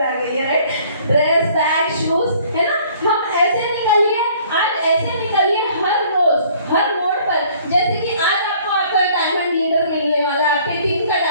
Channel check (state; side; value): inverted; both; correlation -0.56